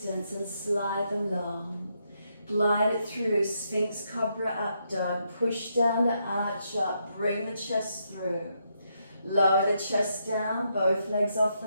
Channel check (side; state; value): both; inverted; correlation -0.79